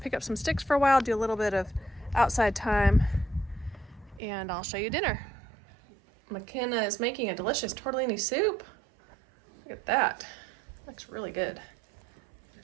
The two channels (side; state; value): left; drops out; at 4.2 s